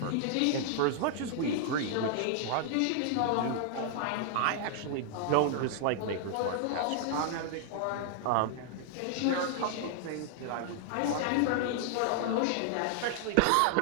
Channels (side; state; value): both; different; correlation -0.01